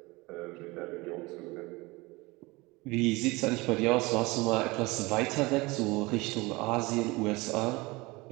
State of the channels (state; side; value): quieter; left; 23.4 dB